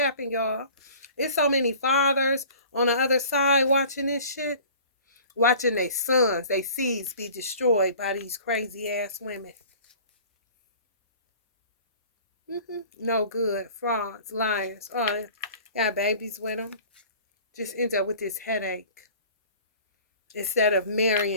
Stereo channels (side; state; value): both; inverted; correlation -0.46